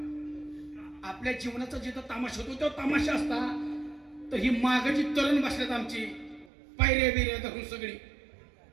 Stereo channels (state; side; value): drops out; left; at 6.5 s